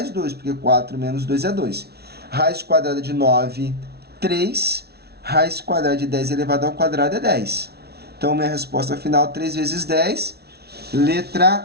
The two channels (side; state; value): left; late; 0.47 ms